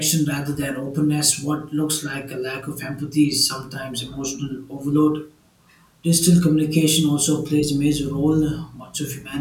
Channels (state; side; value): identical; both; correlation 1.00